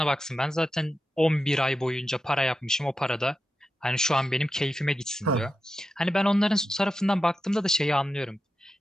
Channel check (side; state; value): both; normal; correlation 0.90